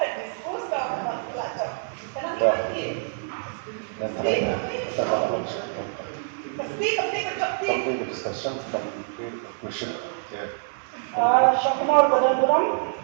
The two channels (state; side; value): silent; left; 61 dB below the other